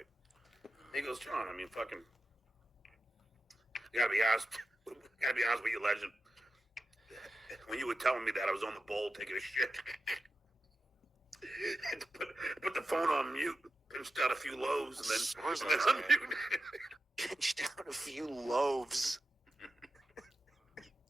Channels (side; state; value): both; normal; correlation 0.90